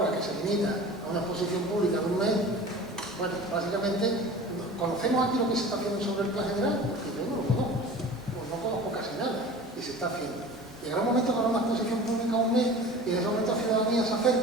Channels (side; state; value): both; normal; correlation 0.39